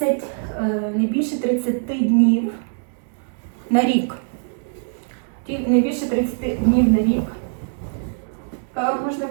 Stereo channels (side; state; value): left; silent; digital silence